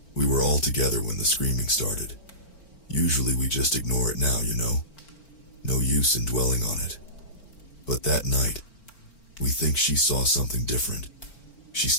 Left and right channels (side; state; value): right; late; 4.4 ms